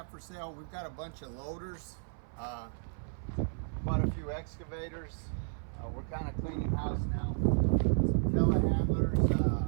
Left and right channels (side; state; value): left; silent; 56 dB below the other